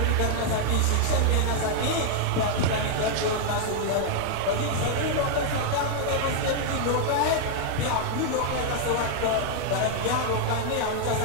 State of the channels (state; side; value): different; both; correlation 0.00